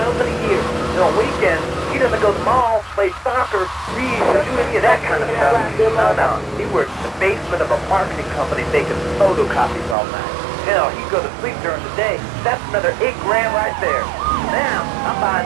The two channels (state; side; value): drops out; left; at 10.0 s